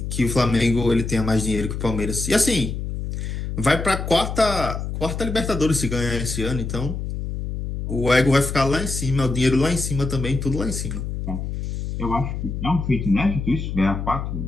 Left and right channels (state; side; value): noise; left; hum, 4 dB below the sound